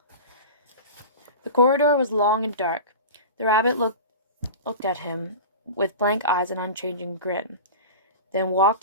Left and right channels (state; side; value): inverted; both; correlation -0.31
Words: The corridor was long and dark. The rabbit looked at him with blank eyes and unchanging grin, then